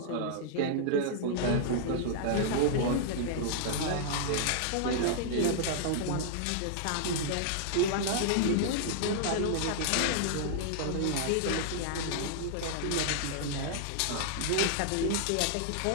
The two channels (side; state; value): both; different; correlation -0.01